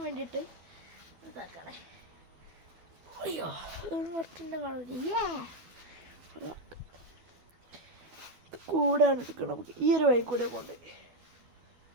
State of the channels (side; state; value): left; late; 12 ms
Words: വേണ്ടിയിട്ട് ഇതാക്കണേ. അയ്യോ കുറച്ചിൻ്റെ കാണുന്നില്ല. കൂടാണ് എടുക്കണം. നമുക്ക് ഈ ഒരു വഴി കൂടെ പോകണ്ടേ.